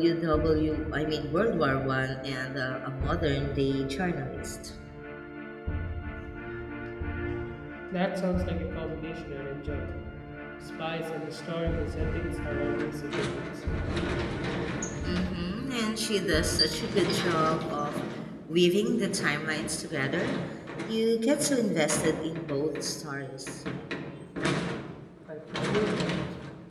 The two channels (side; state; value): both; identical; correlation 1.00